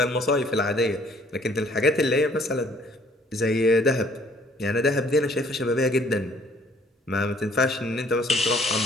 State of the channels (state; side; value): normal; both; correlation 0.60